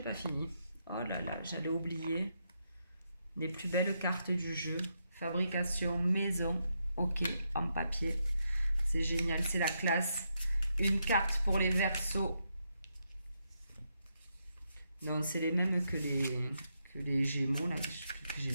pas fini. Oh là là, j'allais oublier. Les plus belles cartes du jeu. Fabrication maison. Ok, en papier. C'est génial, c'est la classe. Une carte pour les Verseaux. Non, c'est les mêmes que les Gémeaux là, que j'ai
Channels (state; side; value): inverted; both; correlation -0.81